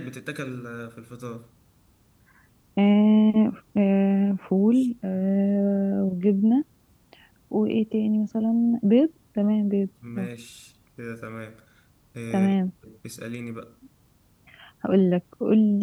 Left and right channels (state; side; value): identical; both; correlation 1.00